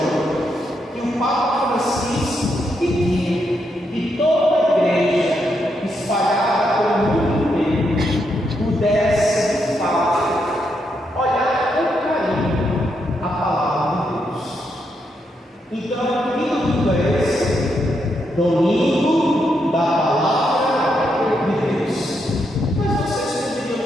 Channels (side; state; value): both; normal; correlation 0.80